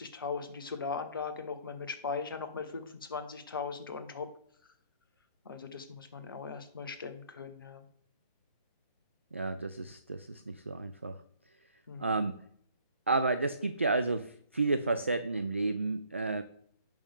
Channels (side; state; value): both; inverted; correlation -0.63